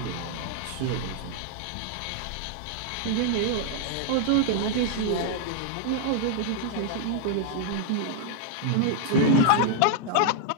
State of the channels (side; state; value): both; different; correlation -0.01